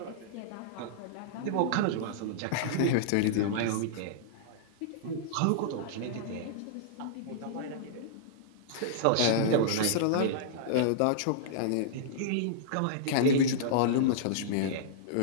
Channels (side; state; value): both; different; correlation -0.02